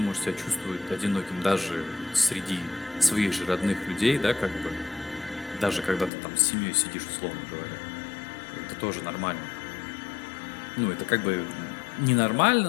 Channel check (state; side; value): drops out; right; at 6.1 s